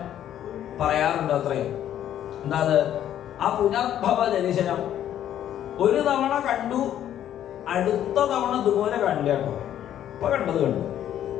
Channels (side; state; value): right; quieter; 11.0 dB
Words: പറയാറുണ്ട്. അത്രയും എന്താ അത്? ആ പുനർഭവ ദർശനം ഒരു തവണ കണ്ടു, അടുത്ത തവണ ഇതുപോലെ കണ്ടില്ല കേട്ടോ. ഇപ്പൊ കണ്ടത് കണ്ടു,